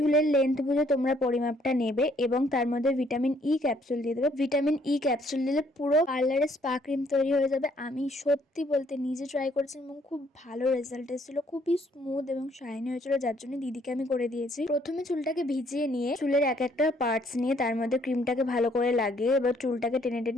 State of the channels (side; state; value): both; normal; correlation 0.65